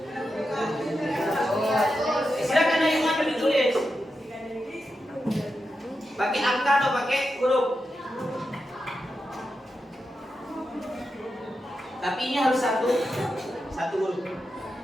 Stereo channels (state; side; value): normal; both; correlation 0.88